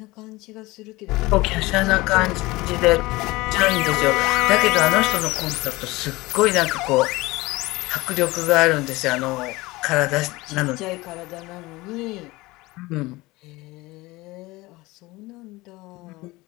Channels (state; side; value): quieter; right; 21.0 dB